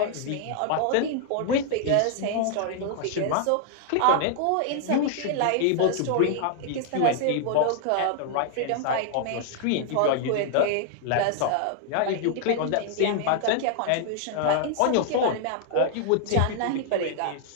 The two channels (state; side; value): different; both; correlation 0.00